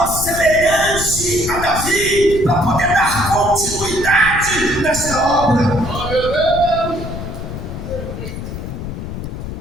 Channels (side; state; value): left; noise; rumble, 8 dB below the sound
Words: semelhantes a Davi para poder dar continuidade nesta obra.